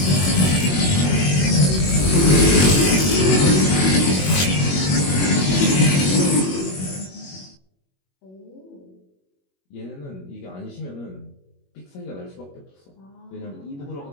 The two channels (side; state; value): right; late; 21 ms